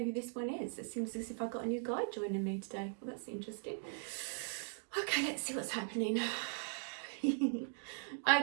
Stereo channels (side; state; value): left; silent; digital silence